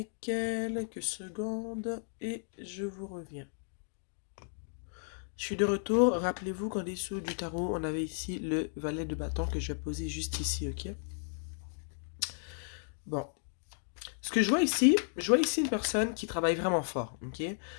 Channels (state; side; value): silent; right; digital silence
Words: quelques secondes et je vous reviens. Je suis de retour. Rappelez-vous qu'en dessous du tarot, on avait ici le valet de bâton que je vais poser juste ici, ok? Bon. Ce que je vois ici une personne qui travaille vraiment fort, ok?